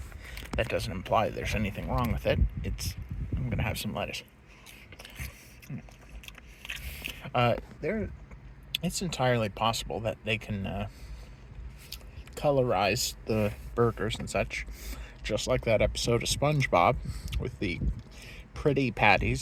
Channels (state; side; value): identical; both; correlation 1.00